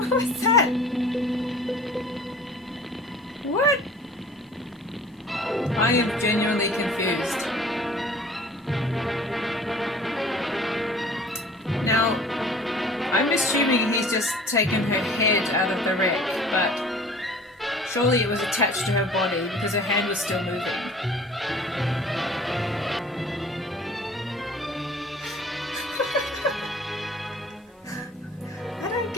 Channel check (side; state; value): both; normal; correlation 0.47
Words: was that? What? I am genuinely confused. Now, I'm assuming he's just taken her head out of the wreck, but surely it was attached to her body because her hand was still moving. I don't